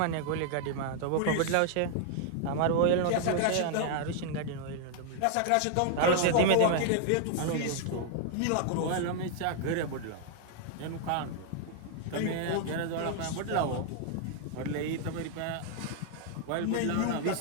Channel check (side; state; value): both; different; correlation 0.00